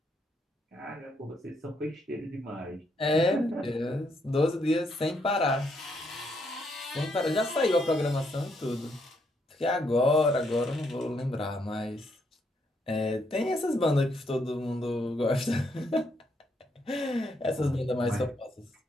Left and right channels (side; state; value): both; normal; correlation 0.75